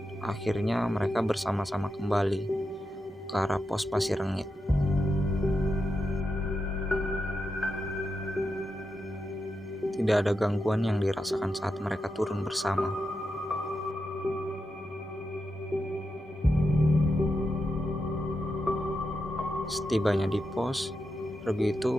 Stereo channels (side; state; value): both; normal; correlation 0.87